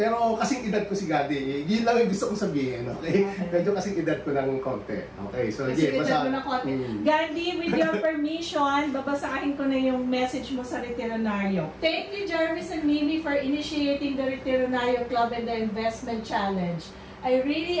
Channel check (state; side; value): identical; both; correlation 1.00